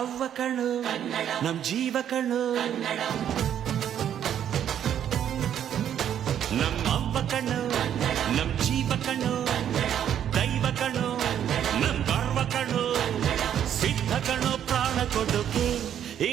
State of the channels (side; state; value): left; quieter; 9.8 dB